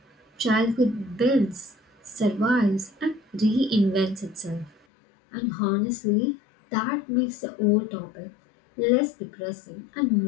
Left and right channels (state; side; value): drops out; right; at 4.8 s